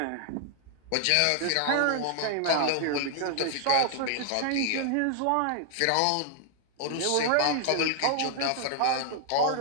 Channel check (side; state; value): both; different; correlation 0.00